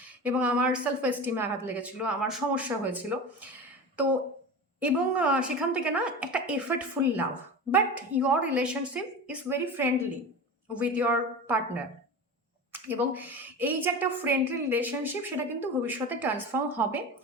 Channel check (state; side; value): normal; both; correlation 0.29